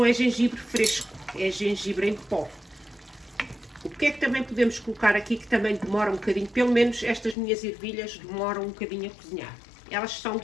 é gengibre fresco, é gengibre em pó. O que é que também podemos colocar aqui que também demora um bocadinho, pelo menos estas minhas ervilhas demoram um bocadinho a cozinhar. Elas são um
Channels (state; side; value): drops out; right; at 7.4 s